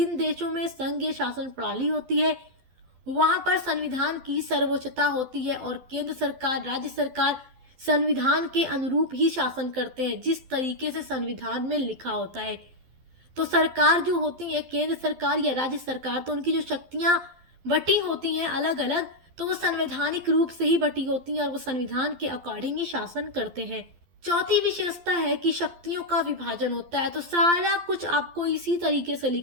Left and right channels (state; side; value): late; left; 12 ms